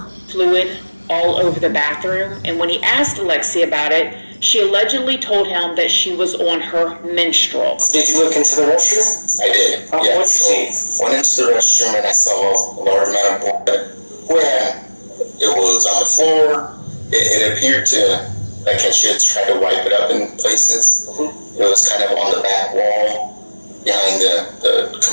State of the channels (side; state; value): both; inverted; correlation -1.00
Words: Fluid all over the bathroom, and when he asked Alexee about it, she allegedly told him that she was on her menstrual. Did you look into the restroom? I did. Yeah. What'd you see? Went into the restroom and I saw a large amount of blood where it was on the floor. It appeared to, she had tried to wipe it up in places. Mm-hmm. It was kind of on the back wall behind the